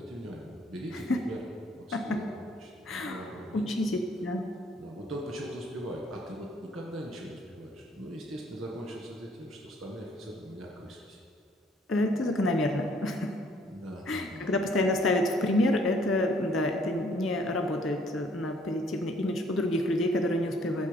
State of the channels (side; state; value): both; normal; correlation 0.62